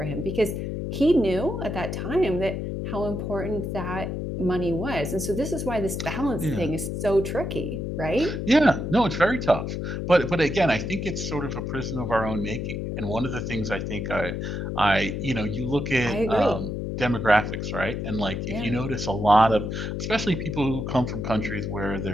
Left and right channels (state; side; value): noise; left; hum, 3 dB below the sound